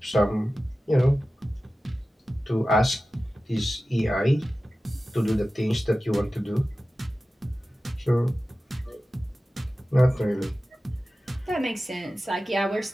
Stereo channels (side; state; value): both; normal; correlation 0.95